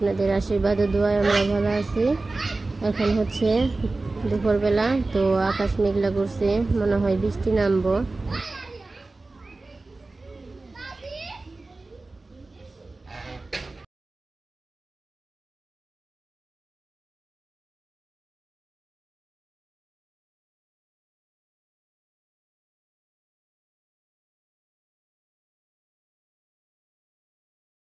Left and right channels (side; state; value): left; quieter; 3.3 dB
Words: আশীর্বাদ ও দোয়ায় আমরা ভালো আছি। এখন হচ্ছে দুপুরবেলা, তো আকাশ মেঘলা করছে, মনে হয় বৃষ্টি নামবো।